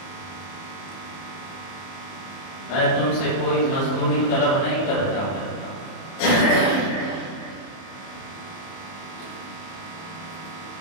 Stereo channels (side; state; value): right; late; 31 ms